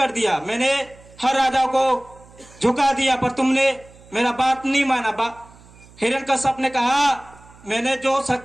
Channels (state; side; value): noise; right; hum, 24 dB below the sound